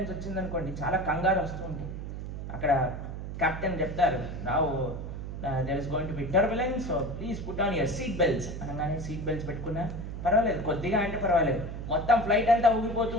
వచ్చిందనుకోండి, చాలా కంగారు వస్తూ ఉంటుంది. అక్కడ కెప్టెన్ చెప్తారు, now there is going to be turbulence, so please put on your seat belts అనగానే సీట్ బెల్ట్స్ పెట్టుకున్నా పర్వాలేదు, కొద్దిగా అంటే పర్వాలేదు. మొత్తం ఫ్లైట్ అంతా ఊగిపోతూ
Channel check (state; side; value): noise; right; hum, 7 dB below the sound